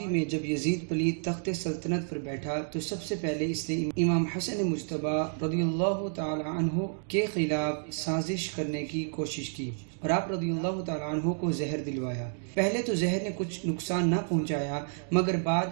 میں جب یزید پلید تخت سلطنت پر بیٹھا تو سب سے پہلے اس نے امام حسن مجتبی رضی اللہ تعالی عنہ کے خلاف سازش کرنے کی کوشش کی اور آپ رضی اللہ تعالی عنہ کو زہر دلوایا۔ پہلے تو زہر نے کچھ نقصان نہ پہنچایا، مگر بعد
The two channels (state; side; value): silent; left; digital silence